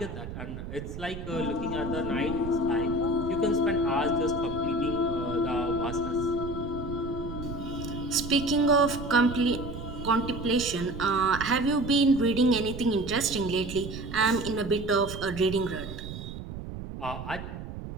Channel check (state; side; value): noise; right; rumble, 9 dB below the sound